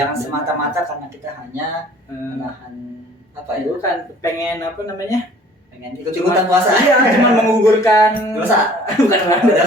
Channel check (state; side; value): normal; both; correlation 0.52